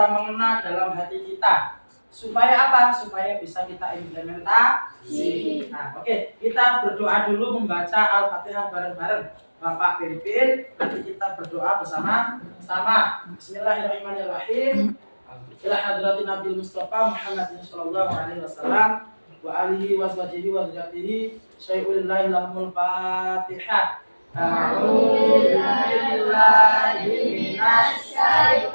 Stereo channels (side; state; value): both; inverted; correlation -1.00